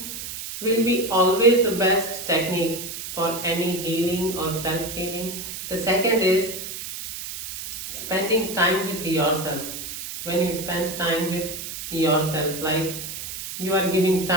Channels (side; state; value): right; noise; hiss, 8 dB below the sound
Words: will be always the best technique for any healing or self-healing. The second is spending time with yourself. When you spend time with yourself, like you are giving